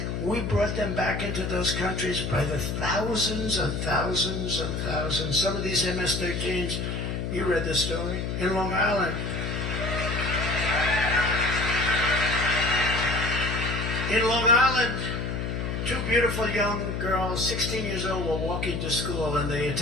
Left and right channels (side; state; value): left; noise; hum, 2 dB below the sound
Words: We brought them back into those countries by the thousands and thousands and thousands. Some of these MS-13s, you read the story, in Long Island. In Long Island, 2 beautiful young girls, 16 years old, were walking to school and they